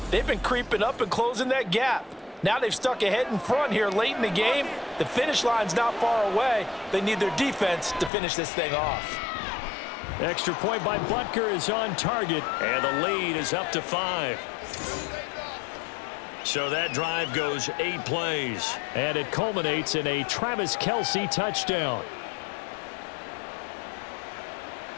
they've been creeping up and closing that gap. Now they've stuck ahead in front here late in the game. The finish line's not far away. They need their defense to finish this thing off. Extra point by Butker is on target, and the lead is up to 5. So that drive goes 8 plays, and it culminates in a Travis Kelce touchdown.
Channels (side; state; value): right; drops out; at 8.1 s